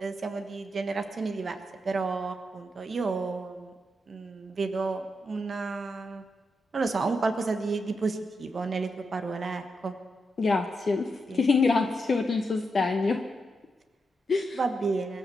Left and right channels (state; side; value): normal; both; correlation 0.85